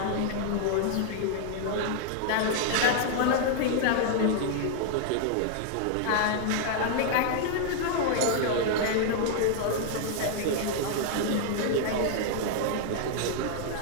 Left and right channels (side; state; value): both; different; correlation 0.00